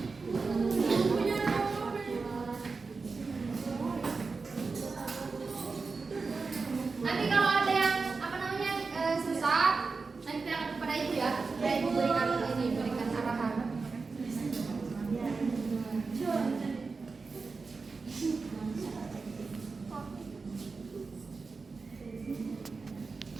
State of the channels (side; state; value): left; quieter; 4.4 dB